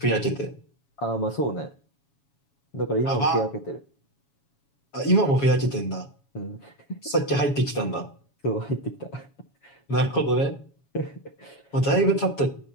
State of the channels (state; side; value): late; right; 7.2 ms